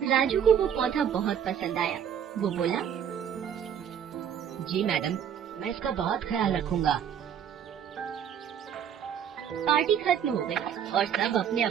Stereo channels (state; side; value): quieter; left; 8.6 dB